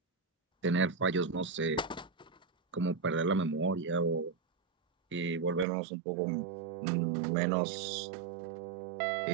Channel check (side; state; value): left; drops out; at 5.7 s